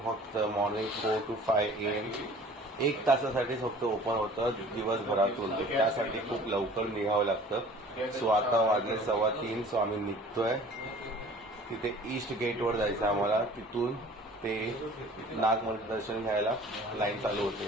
फक्त मॉर्निंग 4 to 5 AM 1 तासासाठी फक्त ओपन होतं दिवसभरातून. त्यासाठी खूप लवकर निघावं लागतं. सो आता वाजले 3:15. सो आम्ही निघतोय. तिथे ईस्ट गेटवर जायचं आम्हाला. तिथून ते नागमणीचं दर्शन घ्यायला लाईन चालू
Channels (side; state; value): both; normal; correlation 0.48